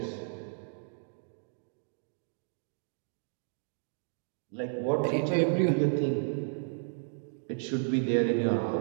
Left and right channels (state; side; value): silent; left; digital silence